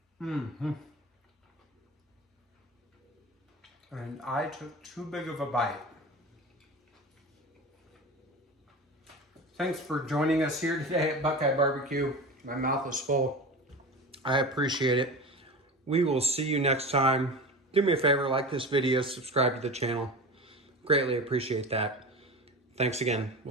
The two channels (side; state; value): both; normal; correlation 0.31